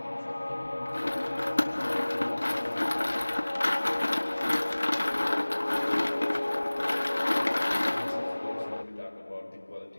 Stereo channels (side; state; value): both; inverted; correlation -1.00